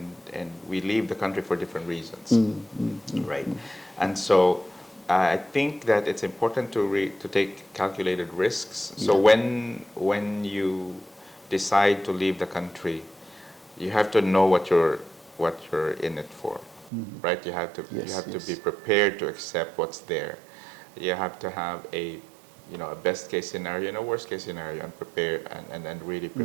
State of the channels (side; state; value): left; drops out; at 16.9 s